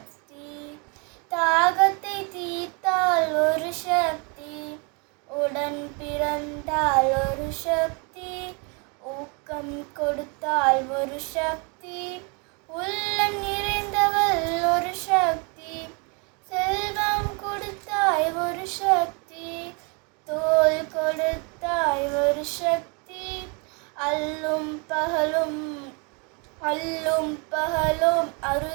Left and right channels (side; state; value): left; quieter; 33.2 dB